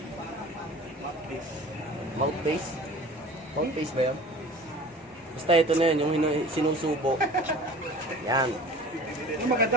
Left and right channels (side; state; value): both; normal; correlation 0.42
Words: Mouthpiece. Mouthpiece ba yan? Basta ito na yun, yung sinusubo. Yan. Yung